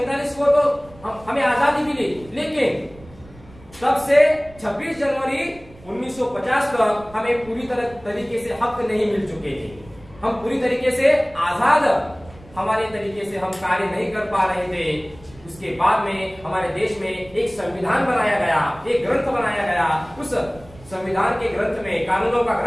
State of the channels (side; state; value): right; noise; rumble, 22 dB below the sound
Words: को तो हमें आजादी मिली, लेकिन तब से 26 जनवरी 1950 तक हमें पूरी तरीके से हक नहीं मिल चुके थे। हम पूरी तरीके से आजाद हमारे तरीके से हम कार्य नहीं कर पा रहे थे। उसके बाद में हमारे देश में एक संविधान बनाया गया, एक ग्रंथ बनाया गया। उस संविधान के ग्रंथ में, कानूनों का